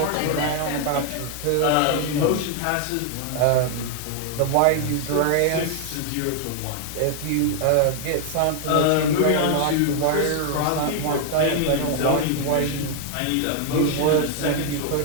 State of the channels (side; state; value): both; different; correlation 0.00